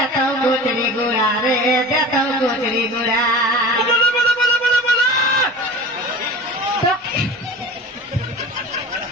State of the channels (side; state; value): both; normal; correlation 0.35